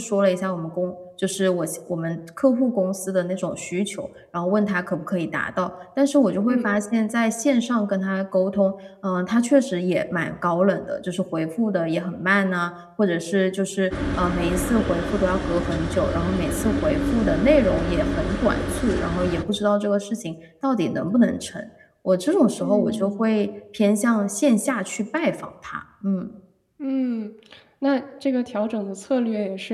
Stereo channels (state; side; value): identical; both; correlation 1.00